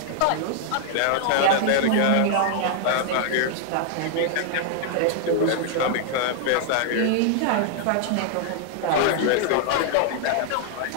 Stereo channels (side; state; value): both; different; correlation -0.01